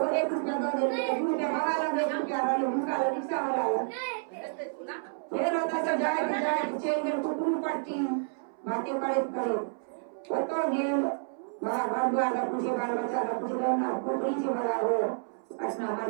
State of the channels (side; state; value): left; silent; 58 dB below the other